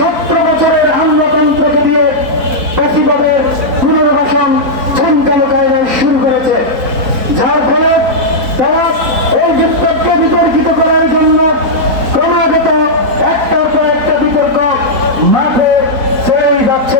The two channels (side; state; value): left; late; 4.2 ms